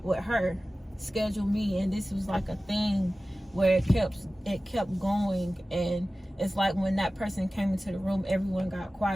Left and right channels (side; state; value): both; normal; correlation 0.96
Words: with her. Schedule me. And this was like a thing where it kept going. And it's like when that person came into the room, everyone got